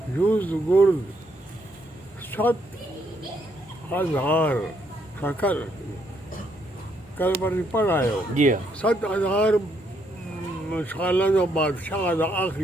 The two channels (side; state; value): both; normal; correlation 0.73